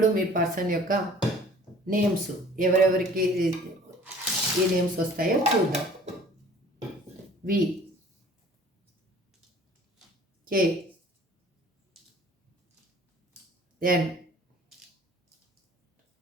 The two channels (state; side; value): normal; both; correlation 0.50